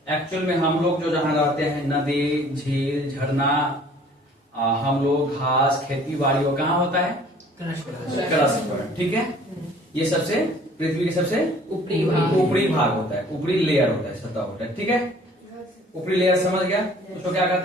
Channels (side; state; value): both; normal; correlation 0.53